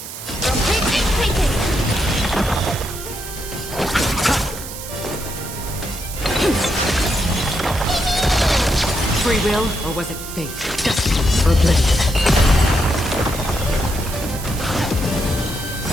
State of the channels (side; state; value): right; noise; hiss, 11 dB below the sound